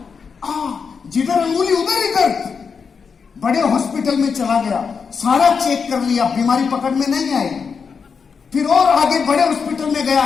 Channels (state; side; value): quieter; right; 5.8 dB